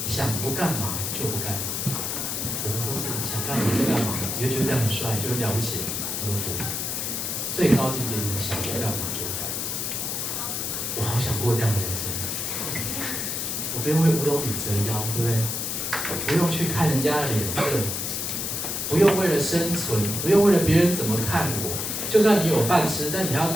想不干嘛就不干嘛。我们都是想干嘛就干嘛，你会觉得这样很帅，就很了不起。我都不，最高境界就是想不干嘛就不干嘛。我好想过这样的人生，我不用为五斗米折腰，对不对？不用去看人家的脸色，不用为了生存，不用为了别人怎么看我。就算你有饭吃，但你还要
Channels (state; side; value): noise; left; hiss, 2 dB below the sound